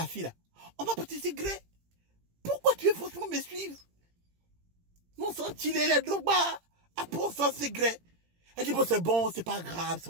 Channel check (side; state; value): left; late; 17 ms